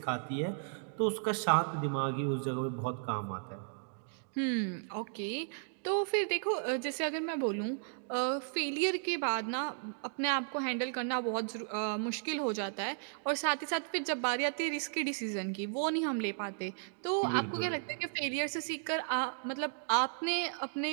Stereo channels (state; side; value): silent; left; digital silence